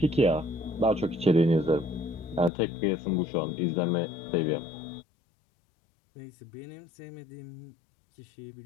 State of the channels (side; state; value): right; drops out; at 2.5 s